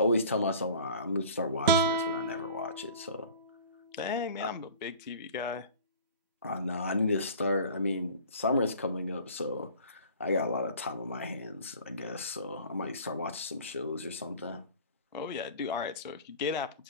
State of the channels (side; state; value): both; inverted; correlation -0.44